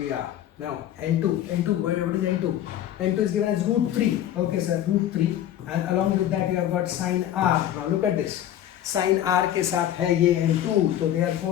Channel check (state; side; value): quieter; right; 11.6 dB